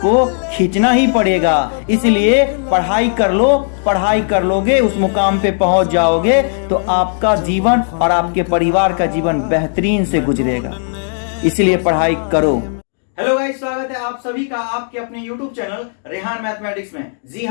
को खींचना ही पड़ेगा। इसलिए पढ़ाई कर लो, पढ़ाई कर लोगे उस मुकाम पे पहुंच जाओगे तो आपका जीवन और आपके परिवार का जीवन बेहतरीन से गुजरेगा। इसलिए पढ़ाई करो। हेलो गाइस, स्वागत है आप सभी का आपके अपने YouTube चैनल रेहान मैथमेटिक्स में। जी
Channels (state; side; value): silent; right; digital silence